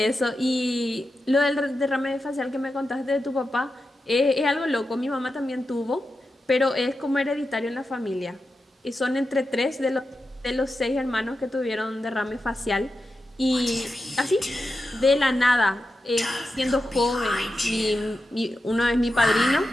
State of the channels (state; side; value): normal; both; correlation 0.90